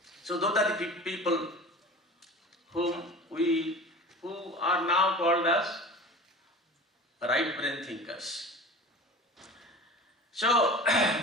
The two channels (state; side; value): normal; both; correlation 0.37